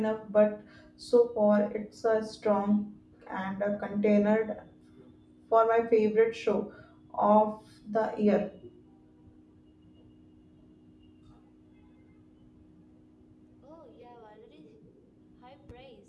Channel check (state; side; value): identical; both; correlation 1.00